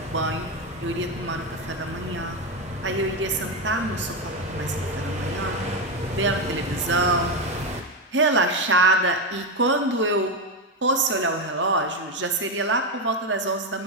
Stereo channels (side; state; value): both; normal; correlation 0.10